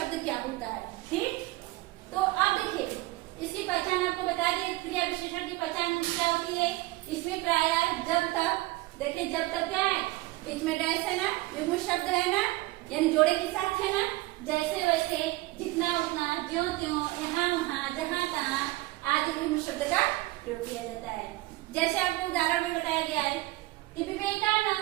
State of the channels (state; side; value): quieter; left; 19.7 dB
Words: क्या होता है। ठीक, तो अब देखिए इसकी पहचान आपको बता दी। क्रिया विशेषण की पहचान क्या होती है? इसमें प्रायः जब तक, देखिए जब तक क्या है? बीच में डैश है ना, युग्म शब्द है ना, यानी जोड़े के साथ है ना, जैसे वैसे, जितना उतना, ज्यों त्यों, यहाँ वहाँ, जहाँ तहाँ आदि युग्म शब्द का प्रयोग किया जाता है। जैसे आपको उदाहरण में बताया गया है कि